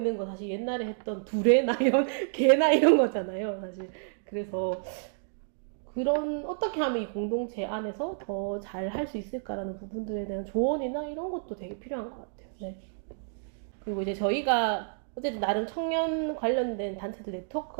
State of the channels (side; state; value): left; silent; digital silence